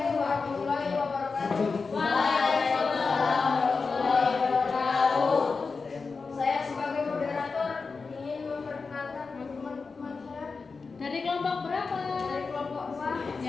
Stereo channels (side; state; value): right; quieter; 4.6 dB